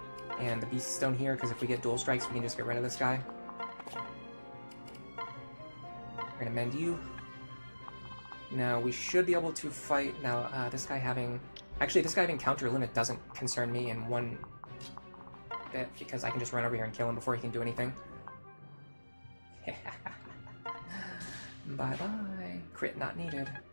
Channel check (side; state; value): both; inverted; correlation -1.00